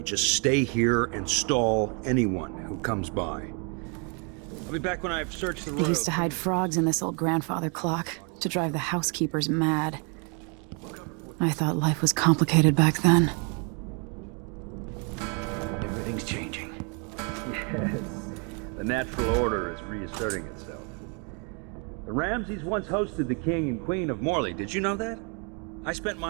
Just stay here and stall anyone who comes by. I'll be back when I've searched the road. They used to hide frogs in this old grandfather clock to drive the housekeepers mad. I thought life was complicated back then. Everything's changing. Yes. The natural order is reasserting itself. The Ramseys once hosted the king and queen of Morley. Did you know that? I spent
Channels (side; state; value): left; quieter; 35.6 dB